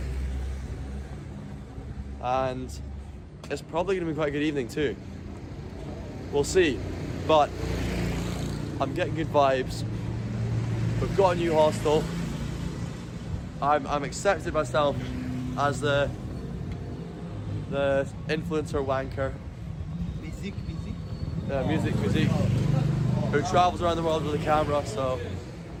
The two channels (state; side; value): identical; both; correlation 1.00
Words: And it's probably going to be quite a good evening too. We'll see, but I'm getting good vibes. We've got a new hostel. I'm accepted myself as the influencer wanker. Music. Yeah, music. Who travels around the world with a camera, so